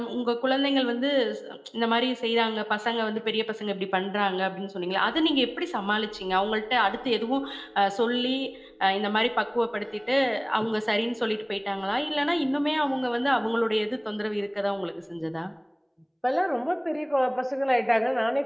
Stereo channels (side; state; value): both; identical; correlation 1.00